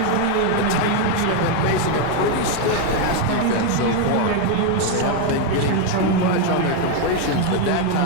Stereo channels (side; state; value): both; different; correlation 0.01